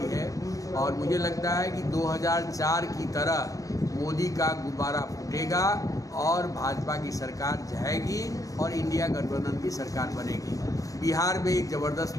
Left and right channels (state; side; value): late; right; 0.16 ms